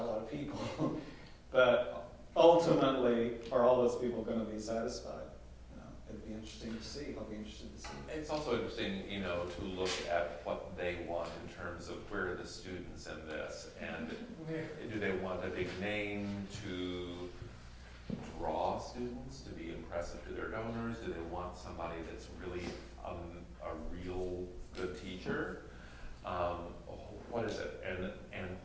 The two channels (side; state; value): both; identical; correlation 1.00